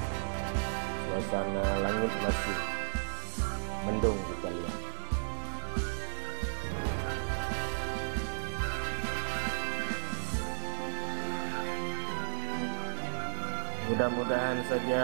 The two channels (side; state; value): left; silent; digital silence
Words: Suasana langit masih mendung kita lihat. Mudah-mudahan